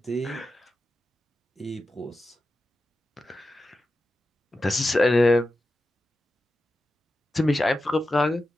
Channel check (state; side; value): normal; both; correlation 0.91